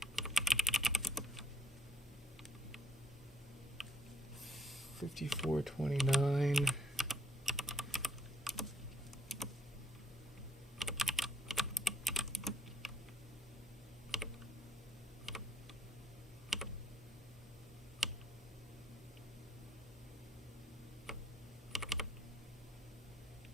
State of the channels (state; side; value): normal; both; correlation 0.72